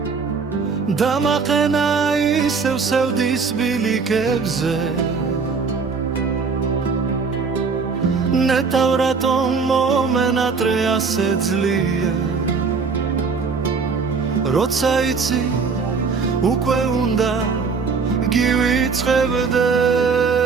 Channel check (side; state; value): left; quieter; 5.1 dB